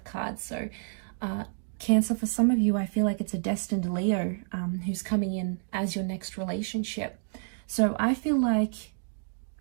card. So Cancer, for some of you, I feel like it's a destined Leo who's coming in as your next relationship. So I feel like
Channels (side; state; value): left; silent; digital silence